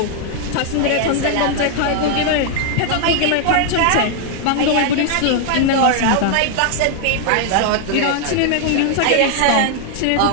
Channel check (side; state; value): both; different; correlation 0.00